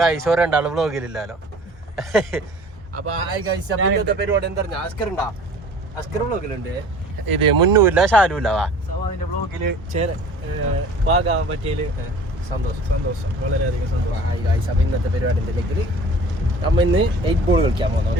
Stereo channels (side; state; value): both; normal; correlation 0.46